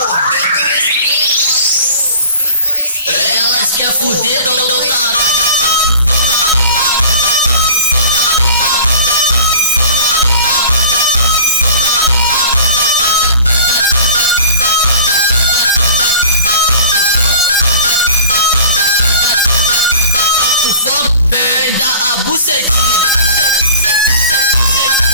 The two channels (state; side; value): inverted; both; correlation -0.43